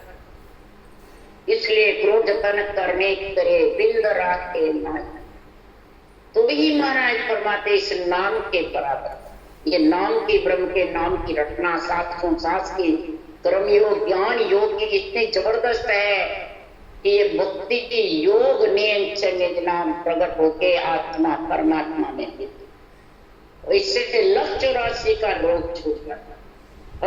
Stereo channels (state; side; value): identical; both; correlation 1.00